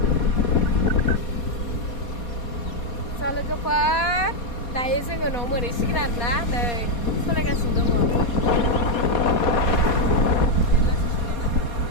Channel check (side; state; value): right; late; 4.2 ms